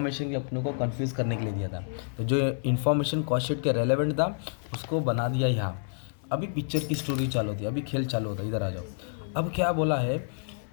के अपने को कंफ्यूज करने के लिए दिया था। तो जो इन्फॉर्मेशन कॉस्ट शीट के रेलेवेंट था उसको बना दिया यहाँ। अभी पिक्चर की स्टोरी चालू होती है, अभी खेल चालू होता है, इधर आ जाओ। अब क्या बोला है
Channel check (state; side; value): silent; right; 59 dB below the other